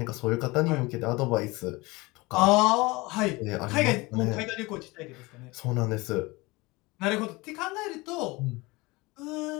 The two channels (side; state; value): right; quieter; 23.2 dB